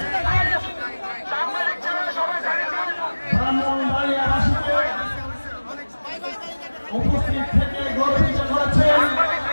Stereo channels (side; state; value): both; inverted; correlation -1.00